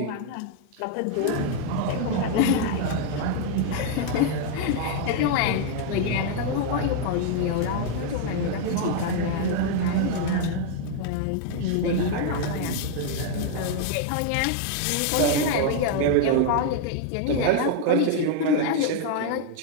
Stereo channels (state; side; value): different; both; correlation 0.00